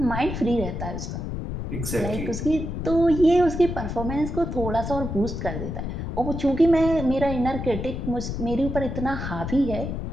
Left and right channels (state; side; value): noise; left; rumble, 5 dB below the sound